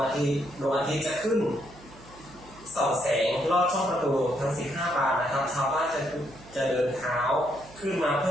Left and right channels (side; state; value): right; noise; hum, 21 dB below the sound